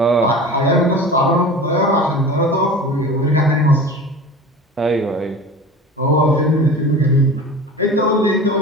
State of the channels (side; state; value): both; normal; correlation 0.36